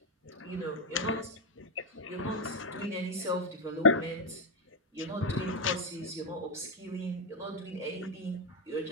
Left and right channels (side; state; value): both; normal; correlation 0.03